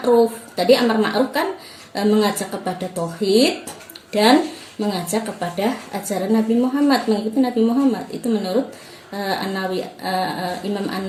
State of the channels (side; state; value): both; identical; correlation 1.00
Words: Tadi amar ma'ruf kan mengajak kepada tauhid dan mengajak kepada ajaran Nabi Muhammad, mengikuti Nabi Muhammad. Itu menurut Imam